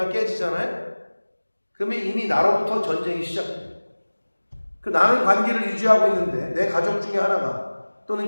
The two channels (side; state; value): both; inverted; correlation -1.00